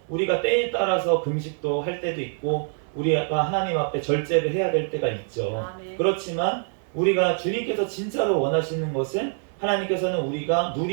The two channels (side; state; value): left; silent; 57 dB below the other